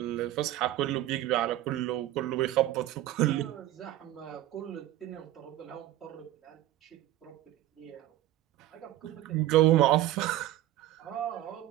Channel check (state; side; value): quieter; left; 14.2 dB